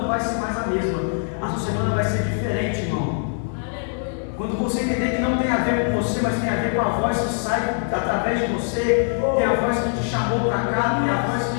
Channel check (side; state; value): right; silent; 57 dB below the other